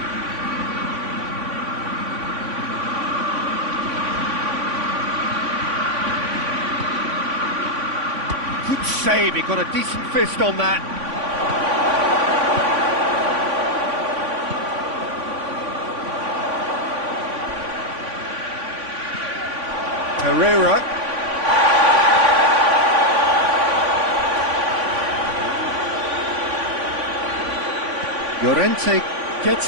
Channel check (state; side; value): late; left; 3.5 ms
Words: Good save, he got a decent fist on that. Pereira. Llorente